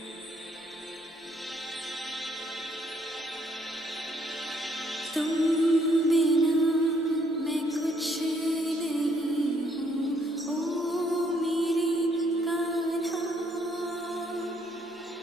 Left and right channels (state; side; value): normal; both; correlation 0.69